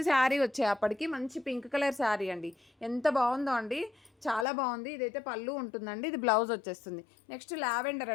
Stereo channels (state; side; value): drops out; right; at 4.5 s